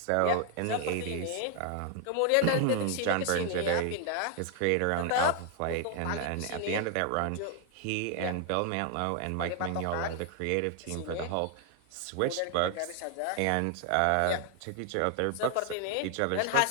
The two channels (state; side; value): different; both; correlation 0.00